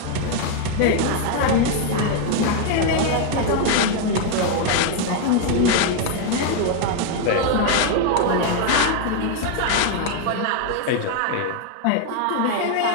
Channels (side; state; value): both; different; correlation 0.00